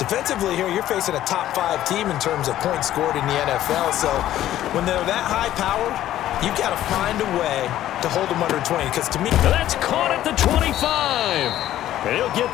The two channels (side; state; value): right; quieter; 13.0 dB